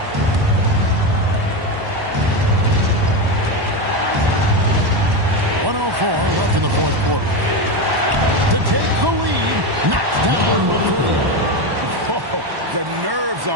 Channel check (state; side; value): late; left; 1.1 ms